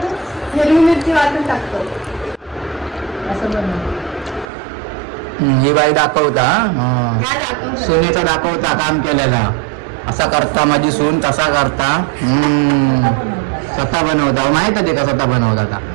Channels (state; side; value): drops out; left; at 4.5 s